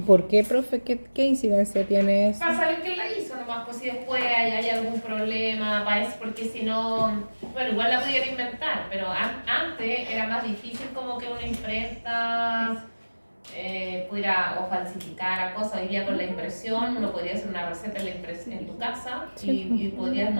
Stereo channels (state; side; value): inverted; both; correlation -1.00